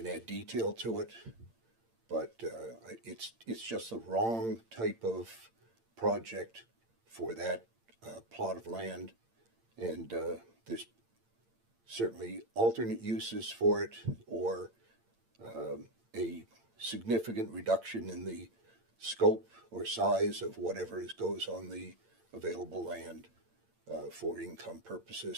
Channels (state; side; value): late; left; 8.8 ms